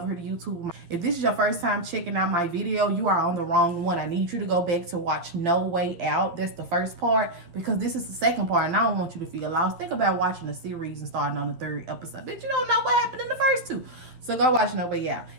here to YouTube. If this is your first time checking out my video, you are on the wrong one. I need you to go back to watch No Way Out. That's the first part, because this is the second part, and I don't want you to feel lost. Think about watching a series and starting on the 3rd episode. Bitch, you don't know what happened in the first 2. So go watch No Way Out.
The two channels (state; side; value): late; left; 11 ms